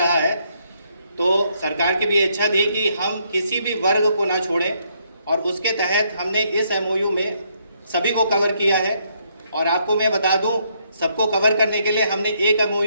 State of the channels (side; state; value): both; inverted; correlation -0.72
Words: है। तो सरकार की भी इच्छा थी कि हम किसी भी वर्ग को ना छोड़ें, और उसके तहत हमने इस एमओयू में सभी को कवर किया है। और आपको मैं बता दूं, सबको कवर करने के लिए हमने एक